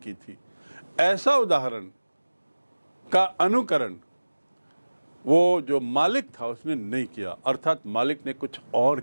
थी। ऐसा उदाहरण का अनुकरण वो जो मालिक था उसने नहीं किया, अर्थात मालिक ने कुछ और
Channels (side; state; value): both; inverted; correlation -1.00